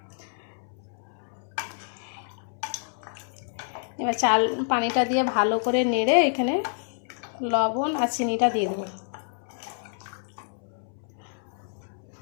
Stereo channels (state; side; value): silent; right; 59 dB below the other